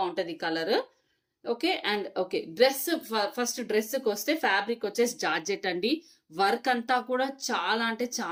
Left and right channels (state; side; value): identical; both; correlation 1.00